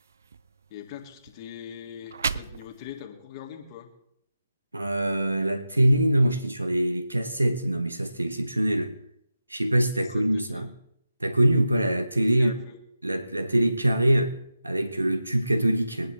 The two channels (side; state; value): both; inverted; correlation -0.91